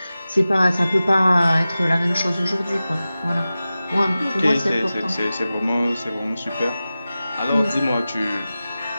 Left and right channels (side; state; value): both; inverted; correlation -0.95